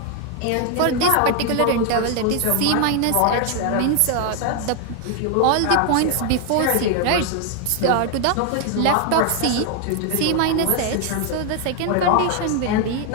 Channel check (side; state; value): both; different; correlation 0.00